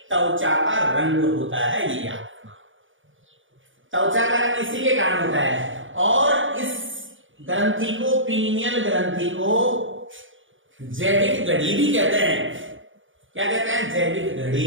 त्वचा का रंग होता है, ये याद रखना। त्वचा का रंग इसी के कारण होता है। और इस ग्रंथि को, पीनियल ग्रंथि को जैविक घड़ी भी कहते हैं। क्या कहते हैं? जैविक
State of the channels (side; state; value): left; late; 0.57 ms